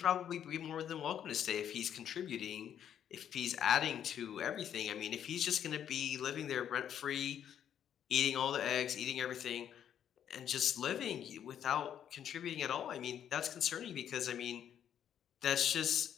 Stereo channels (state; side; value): quieter; right; 9.6 dB